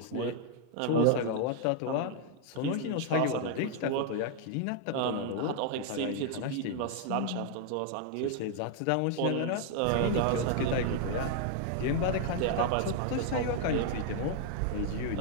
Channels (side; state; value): both; different; correlation 0.00